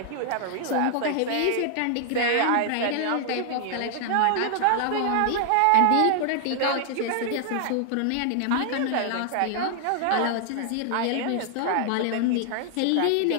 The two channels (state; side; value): different; both; correlation 0.00